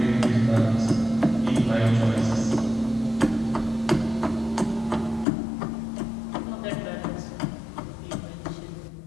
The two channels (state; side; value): drops out; right; at 5.2 s